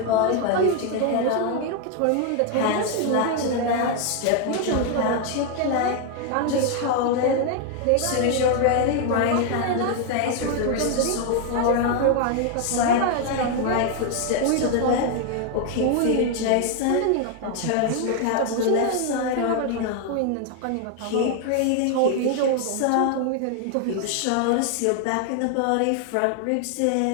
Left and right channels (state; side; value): different; both; correlation 0.01